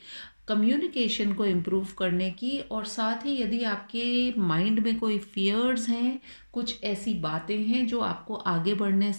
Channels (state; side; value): inverted; both; correlation -1.00